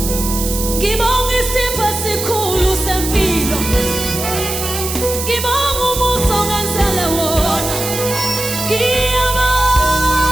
Ngibonga isipho esikhulu sempilo. Ngibonga umusa ongenzele wona. Ngiyabonga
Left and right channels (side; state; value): right; noise; hiss, 5 dB below the sound